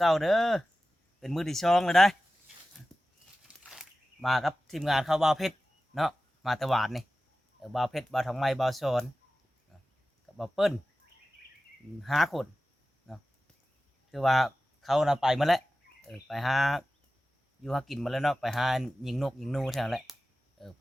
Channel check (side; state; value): both; normal; correlation 0.95